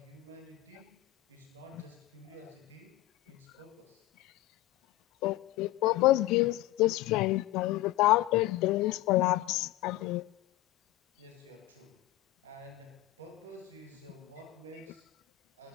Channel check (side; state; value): right; quieter; 16.6 dB